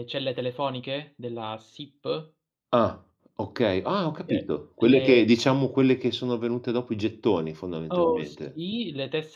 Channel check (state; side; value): identical; both; correlation 1.00